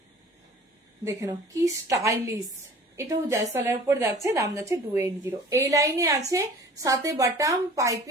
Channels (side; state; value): both; normal; correlation 0.45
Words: দেখে নাও কি স্টাইলিশ, এটাও জয়সওয়ালের উপর যাচ্ছে, দাম যাচ্ছে 280। এই লাইনে আছে সাথে বাটাম